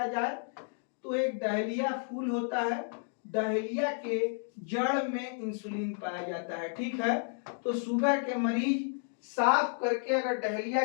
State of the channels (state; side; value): silent; right; 57 dB below the other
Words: जाए, तो एक डहेलिया फूल होता है, डहेलिया के जड़ में इंसुलिन पाया जाता है। ठीक है, तो शुगर के मरीज साफ करके अगर डहेलिया